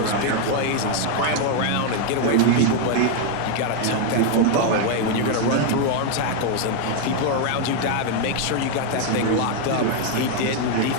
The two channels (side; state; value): both; different; correlation 0.01